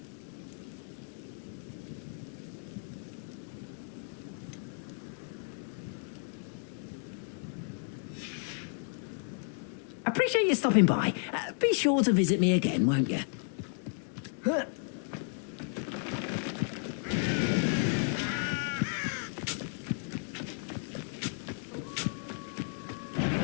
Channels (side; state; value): right; silent; 55 dB below the other